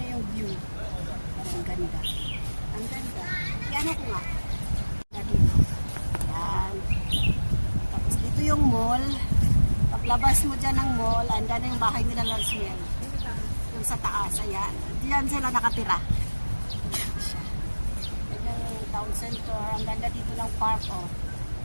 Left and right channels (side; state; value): both; inverted; correlation -1.00